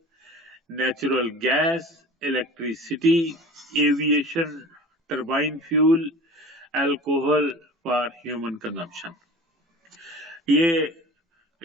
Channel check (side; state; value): both; normal; correlation 0.39